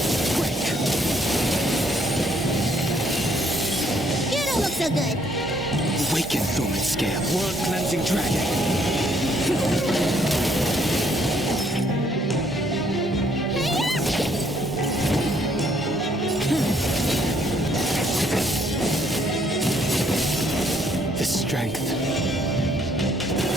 Break. You don't look so good. Awaken, Thoman Scale. World cleansing dragon. The strength.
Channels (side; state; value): both; normal; correlation 0.67